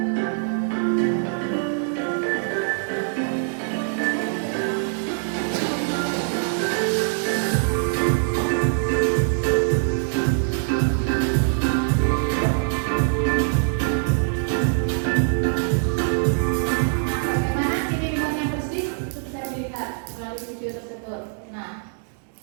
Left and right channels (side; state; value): left; silent; digital silence